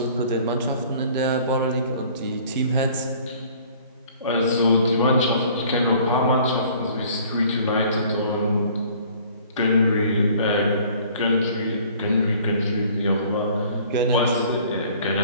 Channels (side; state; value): both; inverted; correlation -0.53